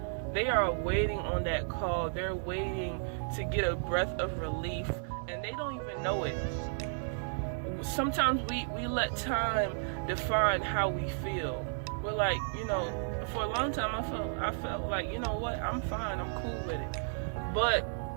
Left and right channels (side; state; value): left; silent; digital silence